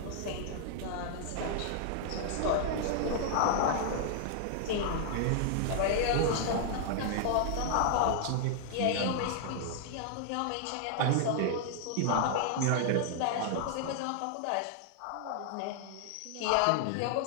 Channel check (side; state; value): both; different; correlation 0.00